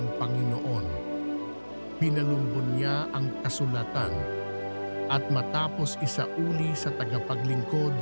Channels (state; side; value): inverted; both; correlation -1.00